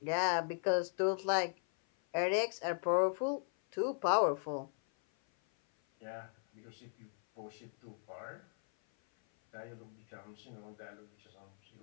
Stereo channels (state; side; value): silent; right; 53 dB below the other